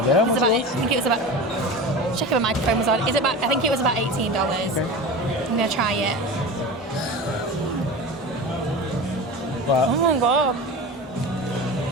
I think it was about. Check if my microphone was on. I think it was about $18. Okay. I'm going to try it. What? Oh my god.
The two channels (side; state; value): both; normal; correlation 0.30